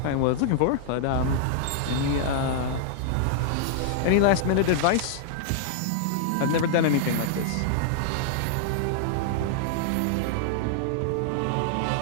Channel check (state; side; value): different; both; correlation -0.01